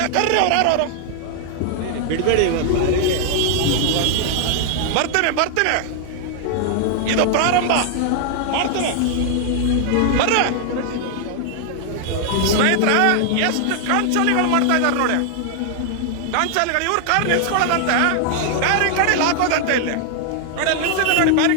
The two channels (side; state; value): both; different; correlation 0.00